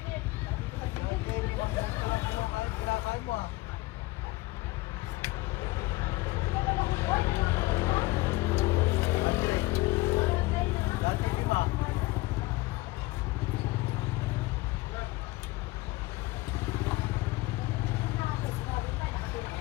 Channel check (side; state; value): right; quieter; 20.6 dB